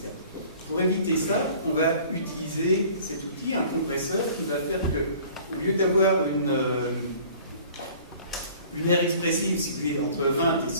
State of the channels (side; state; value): both; inverted; correlation -0.50